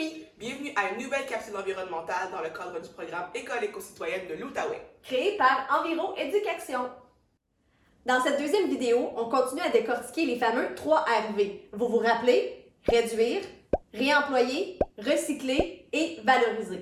Bienvenue à une nouvelle capsule environnementale dans le cadre du programme École éco-citoyenne de l'Outaouais. Créée par Enviro Éducation. Dans cette deuxième vidéo, on continue à décortiquer les fameux 3 RV. Vous vous rappelez? Réduire, réemployer, recycler et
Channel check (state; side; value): identical; both; correlation 1.00